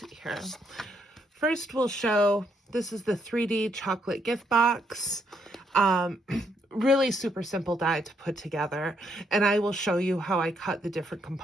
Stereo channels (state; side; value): normal; both; correlation 0.74